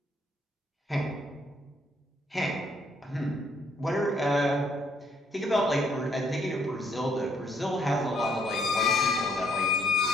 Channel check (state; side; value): normal; both; correlation 0.69